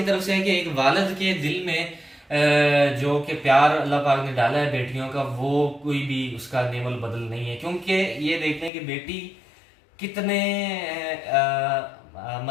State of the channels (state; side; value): drops out; right; at 8.7 s